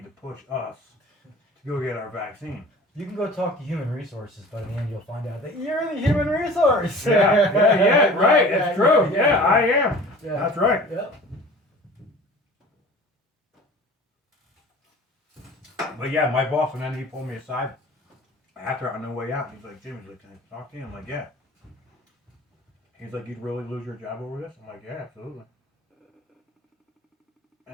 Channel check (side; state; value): both; normal; correlation 0.42